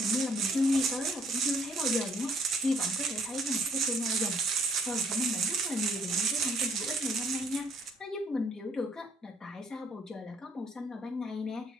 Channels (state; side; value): normal; both; correlation 0.64